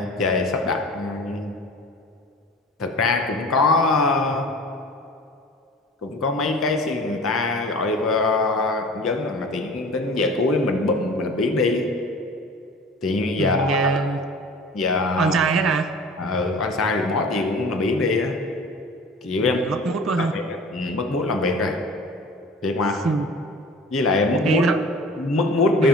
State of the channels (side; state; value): both; normal; correlation 0.41